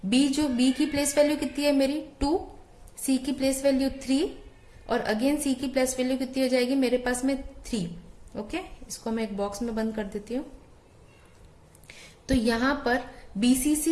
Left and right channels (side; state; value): both; identical; correlation 1.00